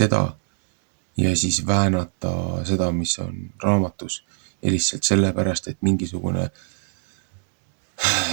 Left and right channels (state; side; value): silent; left; 63 dB below the other